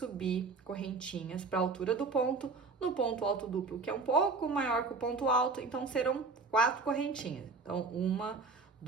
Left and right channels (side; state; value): left; quieter; 4.1 dB